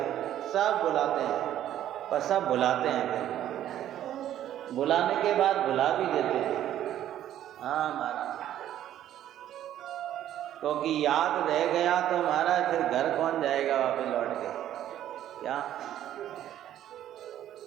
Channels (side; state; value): left; quieter; 11.7 dB